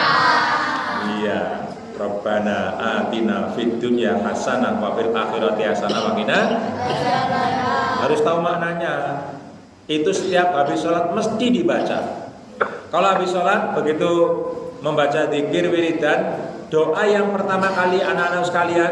Iya. Rabbana atina fid dunya hasanah wa fil akhirati hasanah wa qina. Harus tahu maknanya. Itu setiap habis sholat mesti dibaca. Kalau habis sholat begitu membaca zikir wiridan, doa yang pertama kali anak-anak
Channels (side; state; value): both; identical; correlation 1.00